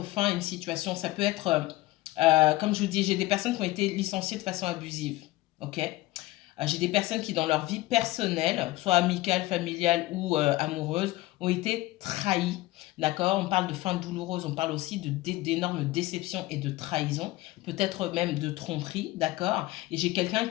fin à une situation. Ça peut être, comme je vous dis, j'ai des personnes qui ont été licenciées de façon abusive. Ok? J'ai des personnes qui, dans leur vie personnelle, soit amicale, familiale ou amoureuse, ont été trahies. D'accord? On parle de fin douloureuse, on parle aussi d'énormes déceptions et de trahison, peut-être même de tromperie. D'accord? Et j'ai quelqu'un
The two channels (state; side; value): quieter; right; 18.3 dB